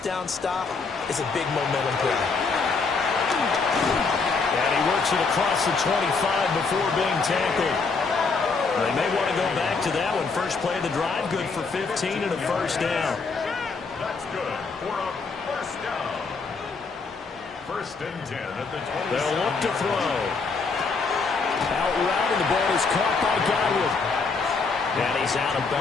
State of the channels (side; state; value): right; quieter; 4.5 dB